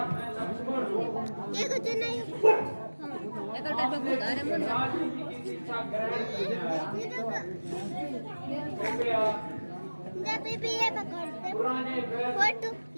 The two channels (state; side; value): inverted; both; correlation -1.00